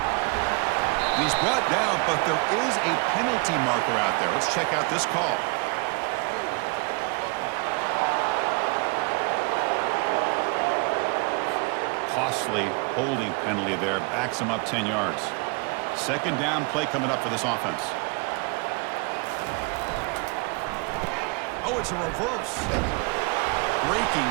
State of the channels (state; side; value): quieter; left; 30.7 dB